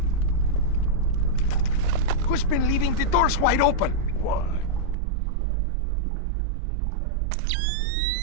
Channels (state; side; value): drops out; left; at 5.0 s